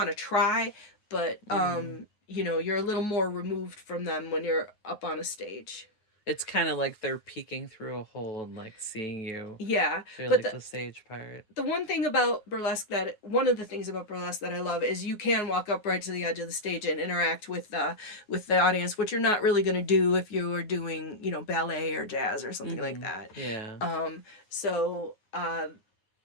to try, but you're a little more removed from them when you're up on a stage. It's kind of like they're peeking through a hole and like seeing you. Yeah, So but like the stage part. The one of the things about burlesque that I love is you can walk up right to the edge of the stage and interact with the audience, which you're not really going to do if you were doing, ballet or jazz or something like that. Yeah. So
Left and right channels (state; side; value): late; right; 9.5 ms